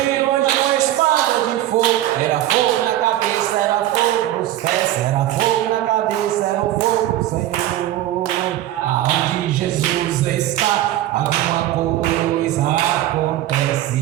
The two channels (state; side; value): quieter; left; 13.7 dB